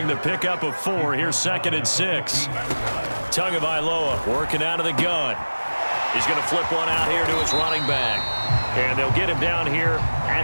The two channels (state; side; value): inverted; both; correlation -1.00